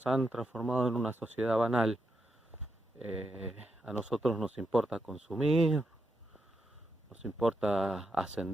han transformado en una sociedad banal. A nosotros nos importa consumir, nos importa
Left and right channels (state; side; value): normal; both; correlation 0.84